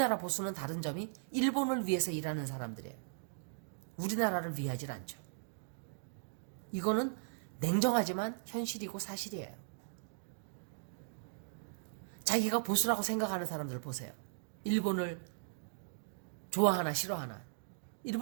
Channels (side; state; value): left; silent; digital silence